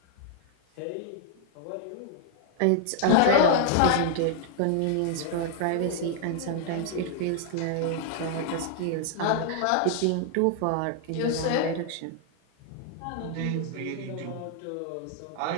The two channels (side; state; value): both; different; correlation 0.00